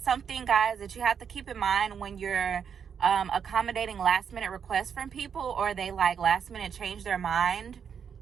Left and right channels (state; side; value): quieter; left; 7.3 dB